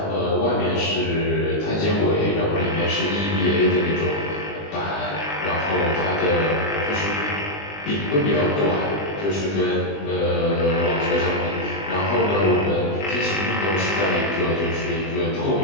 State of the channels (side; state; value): right; late; 20 ms